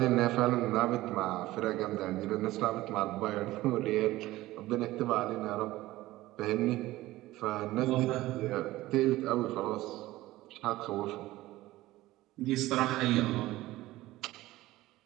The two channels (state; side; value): quieter; left; 17.2 dB